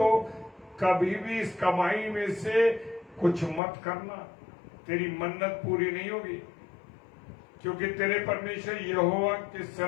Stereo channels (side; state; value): right; drops out; at 3.6 s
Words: कभी भी इस कमाई में से कुछ मत करना, तेरी मन्नत पूरी नहीं होगी। क्योंकि तेरे परमेश्वर यहोवा के